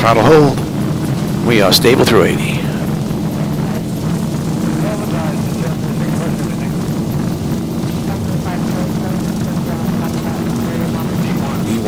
hold. We are stable through 80.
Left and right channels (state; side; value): identical; both; correlation 1.00